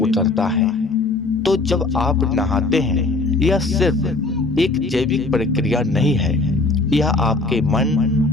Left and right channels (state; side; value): quieter; right; 3.3 dB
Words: है। तो जब आप नहाते हैं यह सिर्फ एक जैविक प्रक्रिया नहीं है, यह आपके मन